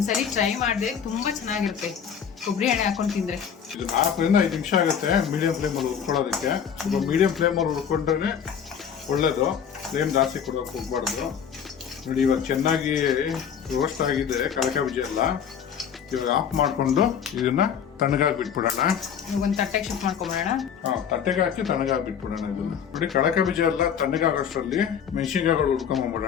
ಟ್ರೈ ಮಾಡಿದೆ, ತುಂಬಾ ಚೆನ್ನಾಗಿರುತ್ತೆ ಕೊಬ್ಬರಿ ಎಣ್ಣೆ ಹಾಕೊಂಡು ತಿಂದ್ರೆ. ಇದು 4ರಿಂದ 5 ನಿಮಿಷ ಆಗುತ್ತೆ ಮೀಡಿಯಂ ಫ್ಲೇಮಲ್ಲಿ ಹುರ್ಕೊಳ್ಳೋದಕ್ಕೆ. ಸ್ವಲ್ಪ ಮೀಡಿಯಂ ಫ್ಲೇಮಲ್ಲಿ ಹುರ್ಕೊಂಡ್ರೆ ಒಳ್ಳೇದು. ಫ್ಲೇಮ್ ಜಾಸ್ತಿ ಕೊಡೋಕೆ ಹೋಗ್ಬಾರ್ದು. ನೋಡಿ, ಇವಾಗ ಚೆನ್ನಾಗಿ ರೋಸ್ಟ್ ಆಗಿದೆ ಕಳಕೆ ಬೀಜ ಎಲ್ಲ. ಇವಾಗ ಆಫ್ ಮಾಡ್ಕೊಂಡು ಇದನ್ನ ತಣ್ಣಗಾಗಿ ಬಿಟ್ಬಿಡೋಣ. ಒಂದ್ ತಟ್ಟೆಗೆ ಶಿಫ್ಟ್ ಮಾಡ್ಕೊಂಬಿಡೋಣ. ತಟ್ಟೆಗೆ ಹಾಕಿ ತಣ್ಣಗಾಗಿ ಬಿಟ್ಬಿಡೋಣ. ಇದನ್ನ ನೋಡಿ, ಕಳಕೆ ಬೀಜ ಎಲ್ಲ ತಣ್ಣಗಾಗೋಷ್ಟರಲ್ಲಿ ಮೆಣಸಿನ್ಕಾಯಿಗಳು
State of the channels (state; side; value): quieter; right; 7.8 dB